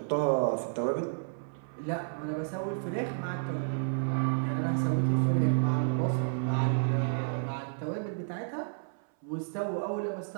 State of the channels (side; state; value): left; silent; 57 dB below the other